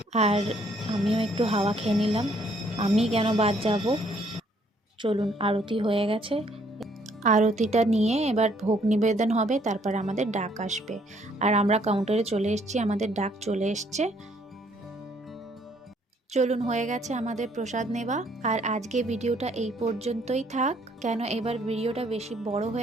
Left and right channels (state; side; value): normal; both; correlation 0.66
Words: আর আমিও একটু হাওয়া খেয়ে নিলাম, আমি কেন বাদ যাব। চলুন, আরতি হয়ে গেছে, আরতিটা নিয়ে এবার ভোগ নিবেদন হবে, তারপর আমাদের ডাক আসবে। আর আমরা কাউন্টারে চলে এসেছি, আমাদের ডাক চলে এসছে। চলুন, হয়ে গেছে আমাদের প্রসাদ নেওয়া। আর আজকে ভিডিওটা এই পর্যন্তই থাক, কেন এবার ভিডিওটা বেশি বড়